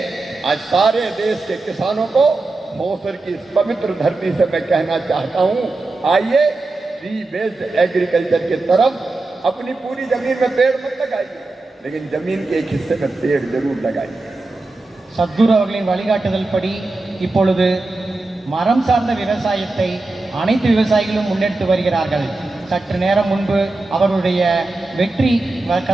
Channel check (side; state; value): left; quieter; 3.2 dB